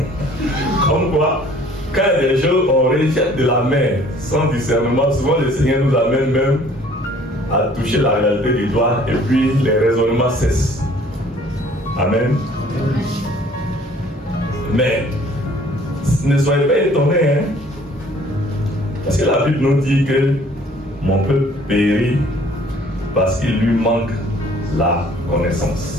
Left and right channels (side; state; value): both; normal; correlation 0.55